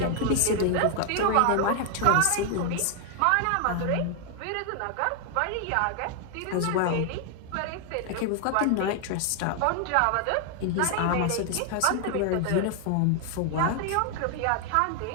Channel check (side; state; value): both; different; correlation 0.00